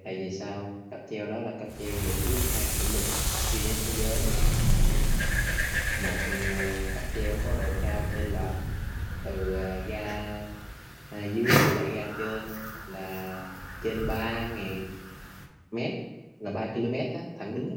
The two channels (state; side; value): identical; both; correlation 1.00